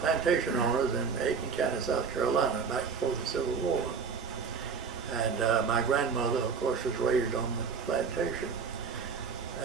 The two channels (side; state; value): left; quieter; 5.7 dB